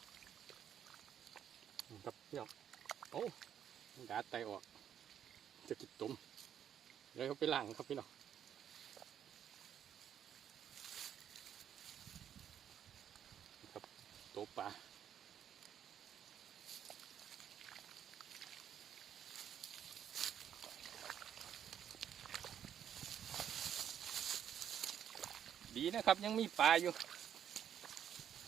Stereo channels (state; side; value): quieter; left; 9.4 dB